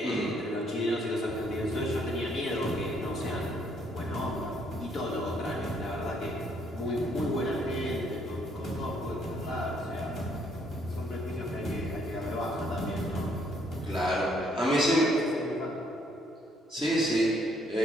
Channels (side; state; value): both; normal; correlation 0.68